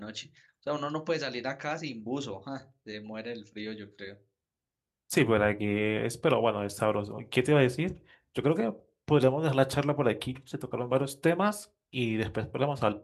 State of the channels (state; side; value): identical; both; correlation 1.00